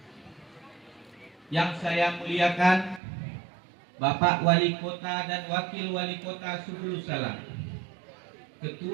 Yang saya muliakan Bapak Wali Kota dan Wakil Wali Kota Subulus Salam,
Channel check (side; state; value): left; drops out; at 3.0 s